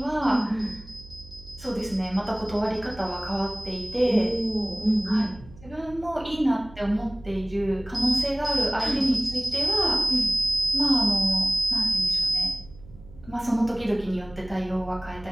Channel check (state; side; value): noise; right; hum, 20 dB below the sound